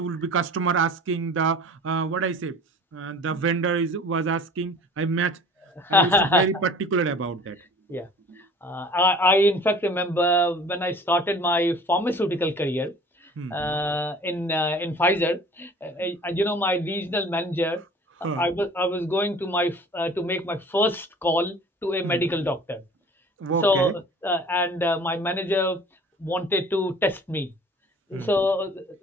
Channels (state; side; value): normal; both; correlation 0.46